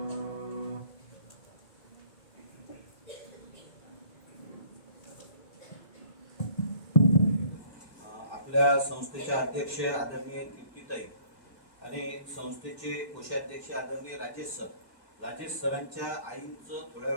आपल्या संस्थेचे अध्यक्ष आदरणीय दीप्तीताई आणि संस्थेचे कोषाध्यक्ष आदरणीय राजेश सरांच्या आईंचं थोड्या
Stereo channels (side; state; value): right; late; 2.0 ms